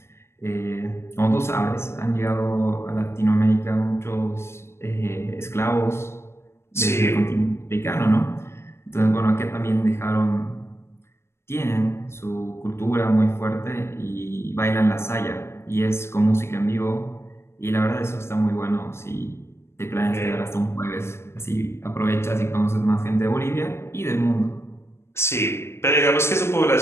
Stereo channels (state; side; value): late; right; 0.12 ms